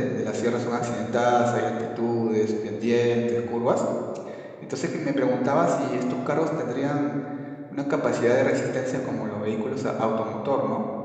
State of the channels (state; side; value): identical; both; correlation 1.00